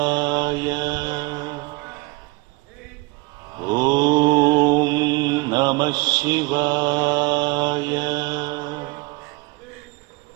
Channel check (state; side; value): quieter; left; 25.0 dB